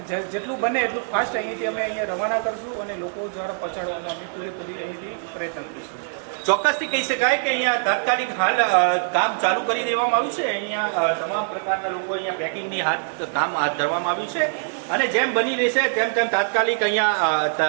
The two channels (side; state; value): left; silent; digital silence